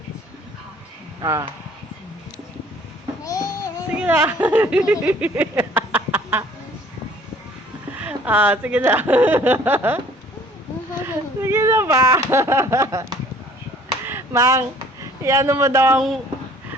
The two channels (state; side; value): normal; both; correlation 0.54